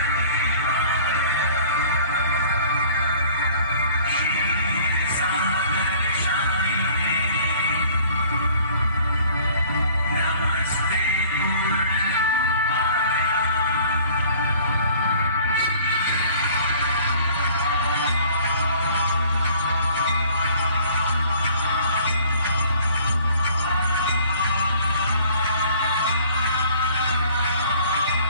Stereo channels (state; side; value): inverted; both; correlation -0.52